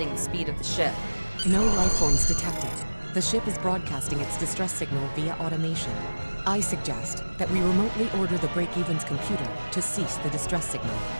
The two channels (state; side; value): inverted; both; correlation -1.00